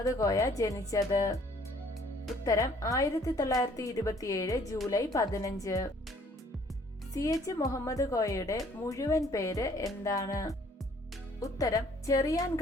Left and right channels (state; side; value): normal; both; correlation 0.59